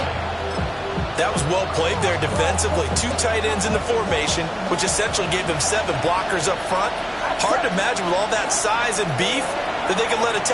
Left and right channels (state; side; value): identical; both; correlation 1.00